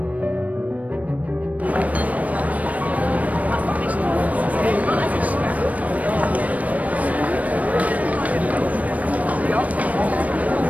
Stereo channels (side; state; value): left; late; 0.069 ms